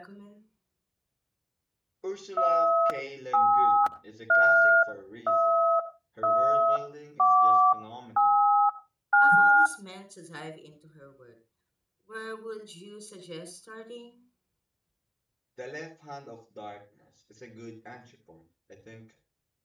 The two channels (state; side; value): identical; both; correlation 1.00